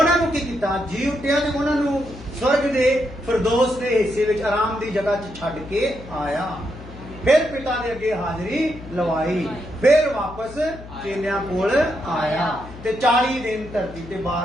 ਨੂੰ ਕੀ ਕੀਤਾ? ਜੀ ਉੱਠਿਆ ਤੇ ਉਹਨਾਂ ਨੂੰ स्वर्ग दे फिरदौस दे हिस्से विच आराम दी जगह च छड्ड के आया। फिर पिता दे अगे हाजरी लवाई, फिर वापस चेलियां कोल आया ते 40 दिन धरती ते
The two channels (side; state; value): left; noise; hum, 16 dB below the sound